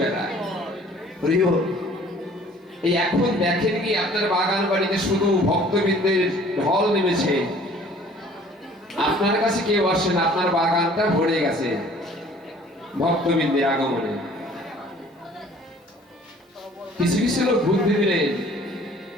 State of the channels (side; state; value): both; normal; correlation 0.53